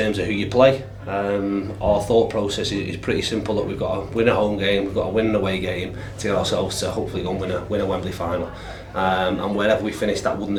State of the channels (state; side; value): identical; both; correlation 1.00